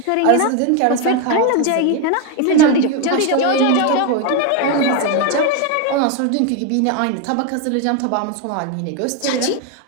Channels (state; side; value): different; both; correlation 0.01